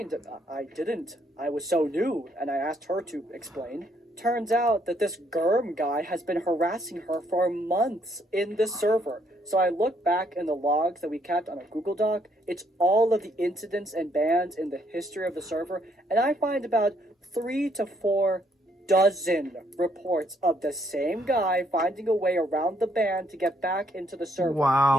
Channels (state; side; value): normal; both; correlation 0.70